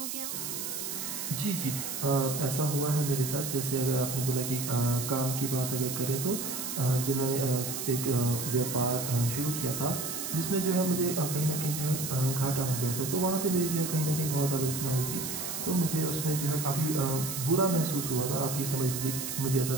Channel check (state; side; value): noise; right; hiss, 4 dB below the sound